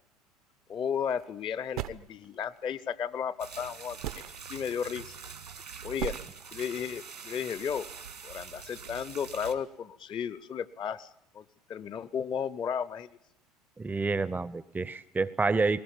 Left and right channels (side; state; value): both; normal; correlation 0.67